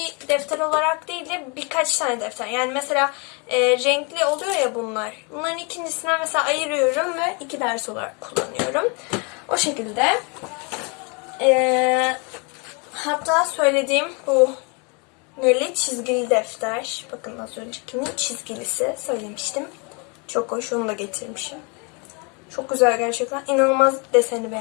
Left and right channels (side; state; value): right; quieter; 32.8 dB